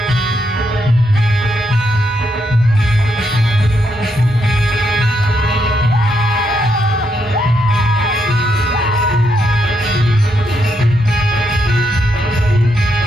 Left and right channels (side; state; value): both; normal; correlation 0.79